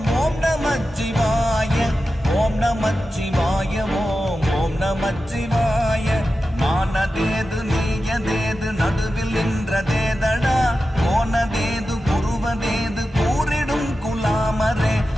ஓம் நமச்சிவாய ஓம் நமச்சிவாய ஓம் ஓம் நமச்சிவாய. மானதேது நீயதேது நடுவில் நின்றதேதடா போனதேது புருவதேது கூறிடும் குலாமரே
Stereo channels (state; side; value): normal; both; correlation 0.92